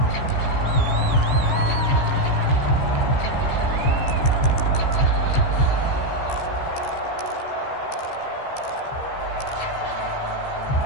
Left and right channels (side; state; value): right; late; 15 ms